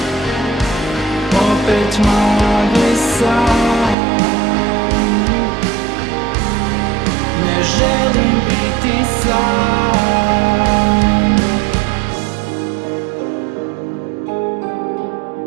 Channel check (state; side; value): drops out; left; at 4.0 s